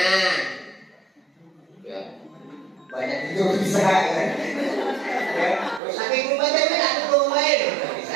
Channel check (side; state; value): left; drops out; at 5.8 s